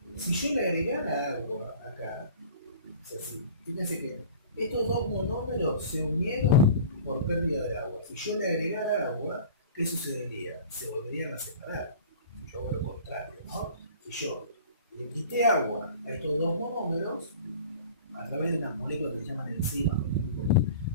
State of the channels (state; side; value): inverted; both; correlation -0.42